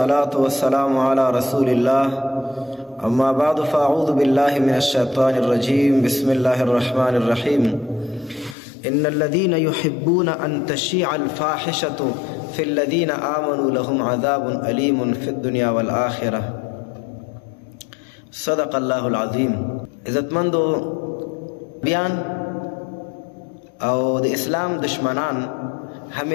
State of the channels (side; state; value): right; drops out; at 8.6 s